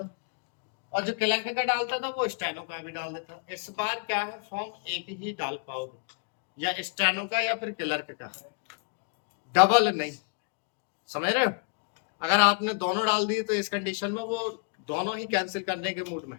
और जो क्लर्क का डालता था वो स्टेनो का भी डाल देता। इस बार क्या है, फॉर्म एक ही डाल पाओगे, या स्टेनो का या फिर क्लर्क का, डबल नहीं। समझ रहे हो? अगर आपने दोनों डाल दिए तो इस कंडीशन में वो दोनों ही कैंसिल करने के मूड में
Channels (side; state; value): right; quieter; 39.6 dB